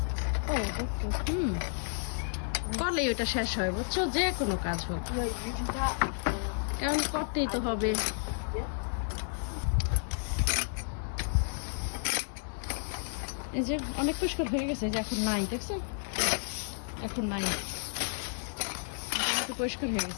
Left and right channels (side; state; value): right; silent; 57 dB below the other